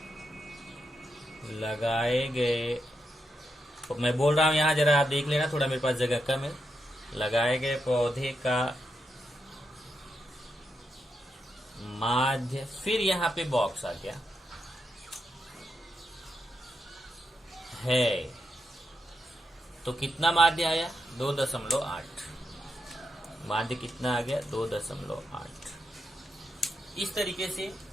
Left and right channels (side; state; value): both; normal; correlation 0.84